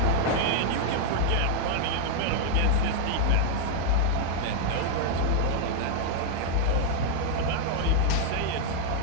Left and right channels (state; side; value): different; both; correlation -0.01